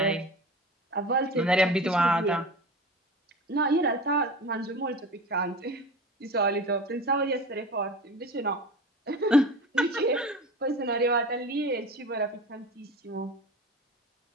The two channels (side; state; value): both; normal; correlation 0.33